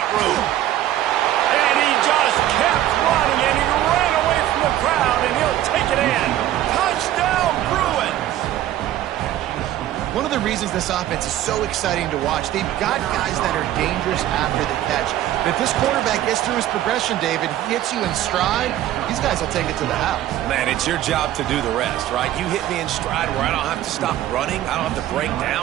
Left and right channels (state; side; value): quieter; left; 13.0 dB